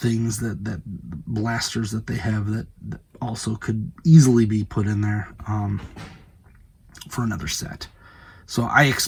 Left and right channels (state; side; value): identical; both; correlation 1.00